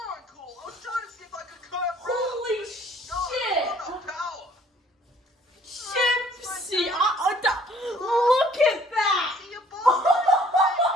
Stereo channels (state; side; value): normal; both; correlation 0.58